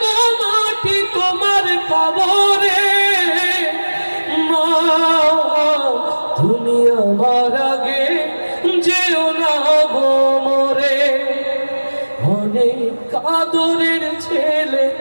মাটি তোমার কবরে মা তুমি আমার আগে যেও না গো মরে অনেক আদরের ছেলে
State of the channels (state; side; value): inverted; both; correlation -1.00